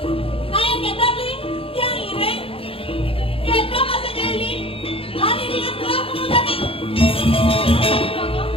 Kayak kita beli, yang ire. Kita masih jadi. Hari dengan telah kemudian nih.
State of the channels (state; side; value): late; right; 0.27 ms